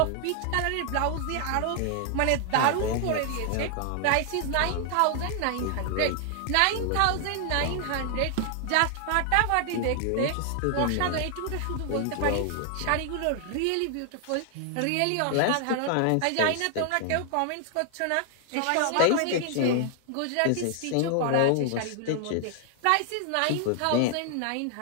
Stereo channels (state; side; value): different; both; correlation 0.00